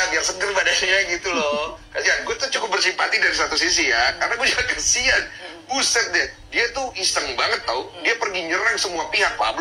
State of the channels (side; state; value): both; identical; correlation 1.00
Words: biar seger badannya gitu loh. Kasihan, gue tuh cukup bersimpati dari satu sisi ya, karena gue juga kasihan. Buset deh, dia tuh iseng banget tau. Dia pergi nyerang semua pihak.